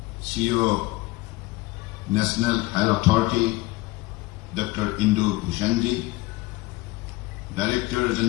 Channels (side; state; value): right; quieter; 20.5 dB